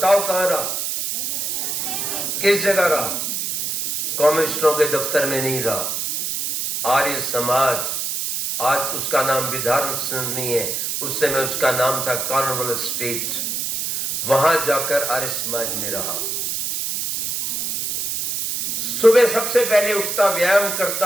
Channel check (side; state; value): right; noise; hiss, 2 dB below the sound